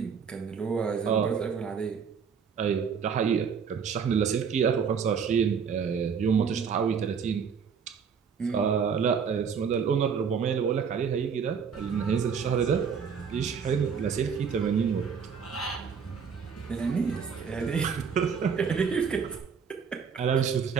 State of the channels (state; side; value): quieter; left; 6.5 dB